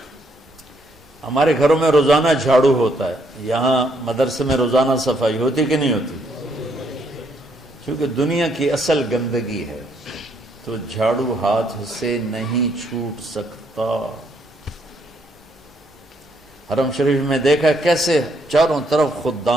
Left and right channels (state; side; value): normal; both; correlation 0.72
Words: ہمارے گھروں میں روزانہ جھاڑو ہوتا ہے، یہاں مدرسے میں روزانہ صفائی ہوتی کہ نہیں ہوتی؟ کیونکہ دنیا کی اصل گندگی ہے تو جھاڑو ہاتھ سے نہیں چھوٹ سکتا۔ حرم شریف میں دیکھا کیسے چاروں طرف